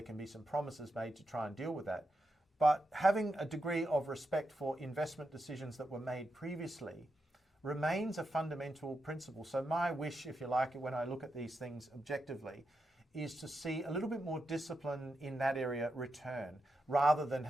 can be some promises made to try and deal with that. But having a degree of respect for investment decisions that were made previously remains a fundamental principle. So my wish, if you like, when I look at these things objectively, is to see a little bit more discipline in that area return, rather than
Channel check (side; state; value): both; normal; correlation 0.86